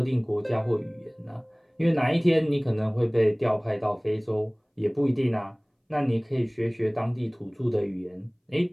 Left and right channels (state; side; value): identical; both; correlation 1.00